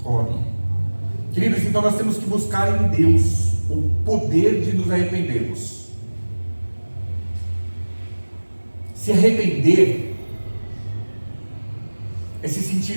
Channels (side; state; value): both; inverted; correlation -1.00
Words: colhe. Queridos, então nós temos que buscar em Deus o poder de nos arrependermos. Se arrepender é se sentir